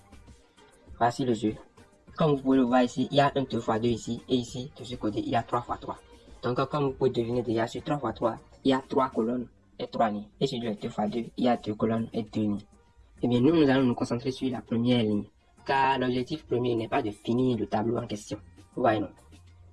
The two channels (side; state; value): both; identical; correlation 1.00